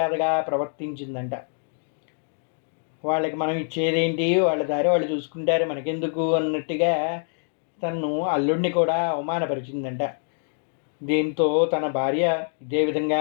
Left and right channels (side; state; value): right; silent; digital silence